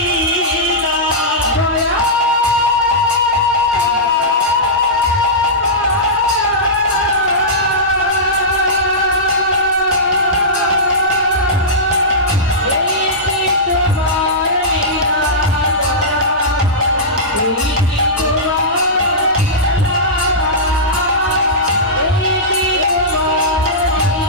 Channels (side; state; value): both; normal; correlation -0.15